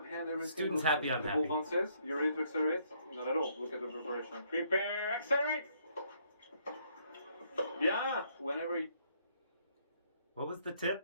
hand, everything. Student's goes- happy, I'm the happy. ball bounces. You ready to accelerate? Not at all. Look at the preparation. Prepare, accelerate. Bien. Whenever What was the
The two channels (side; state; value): both; inverted; correlation -0.69